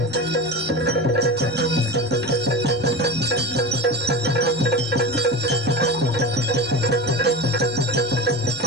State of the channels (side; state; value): both; normal; correlation 0.27